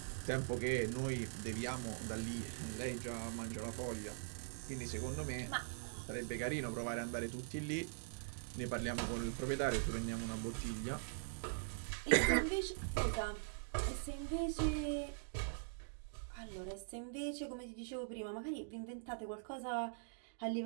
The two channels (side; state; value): left; silent; digital silence